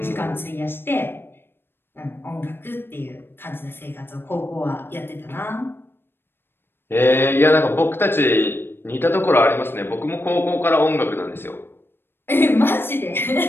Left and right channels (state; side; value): late; right; 0.10 ms